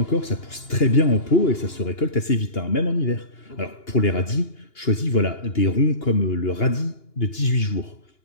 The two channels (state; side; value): late; right; 2.9 ms